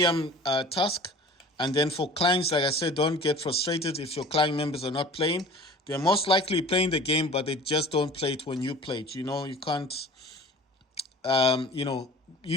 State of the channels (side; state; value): both; normal; correlation 0.43